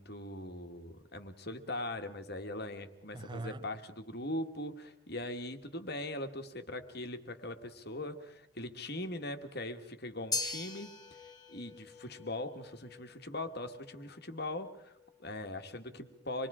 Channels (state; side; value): normal; both; correlation 0.06